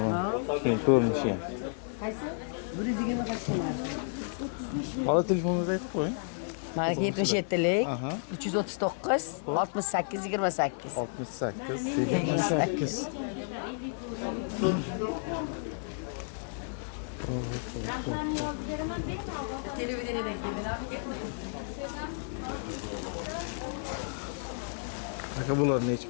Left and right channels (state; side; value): silent; right; 57 dB below the other